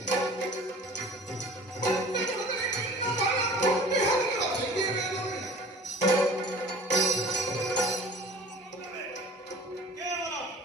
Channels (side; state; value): both; normal; correlation 0.45